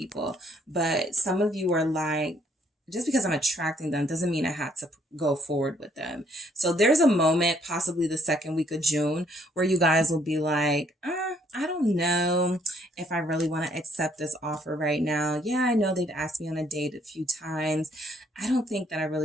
But some of you are like, just because I'm attracting them doesn't mean I have to go forward with them. So there's a moment, possibly the second week of June, where you guys will be like, I don't know if I really want to accept this offer right now. Yeah, I know they've asked me on a date a few times. I don't think that I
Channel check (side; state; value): both; normal; correlation 0.67